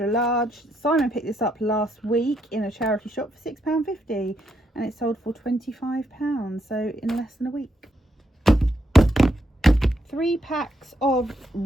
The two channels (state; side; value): normal; both; correlation 0.78